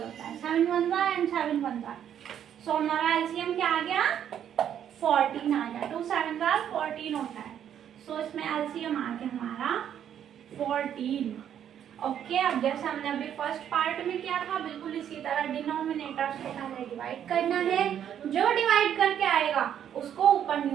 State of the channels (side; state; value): left; quieter; 9.6 dB